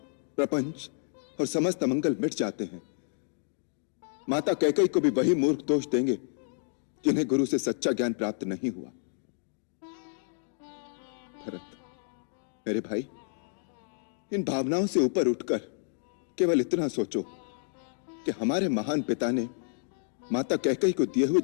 प्रपंच और समस्त अमंगल मिट जाते हैं। माता कैकेयी को भी वही मूर्ख दोष देंगे कि इन्हें गुरु से सच्चा ज्ञान प्राप्त नहीं हुआ। भरत, मेरे भाई, इन भावनाओं से ऊपर उठकर केवल इतना सोचो कि हमारे महान पिता ने माता कैकेयी को दिए हुए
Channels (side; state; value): right; silent; digital silence